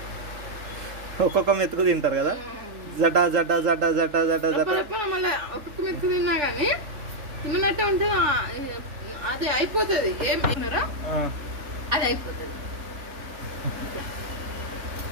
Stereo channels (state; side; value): late; left; 3.4 ms